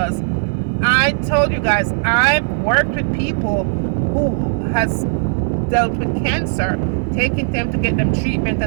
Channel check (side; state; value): left; silent; 63 dB below the other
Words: I told you guys, I've worked with people who has dealt with cancer, taking them to get them treatment